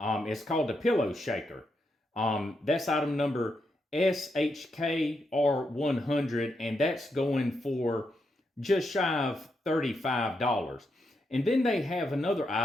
called a pillow shaker. That's item number SHKR100, and that's going for just shy of $35. And then they have another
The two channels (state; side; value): normal; both; correlation 0.82